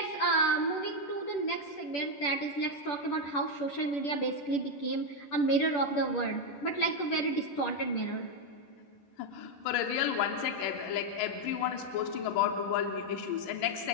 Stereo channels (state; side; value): late; right; 10 ms